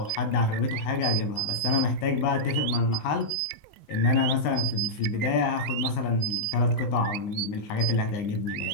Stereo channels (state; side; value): late; right; 19 ms